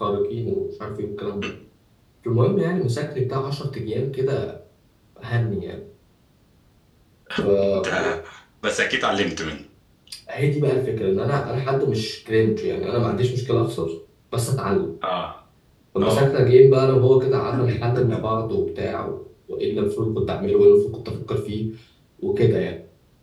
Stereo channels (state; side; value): identical; both; correlation 1.00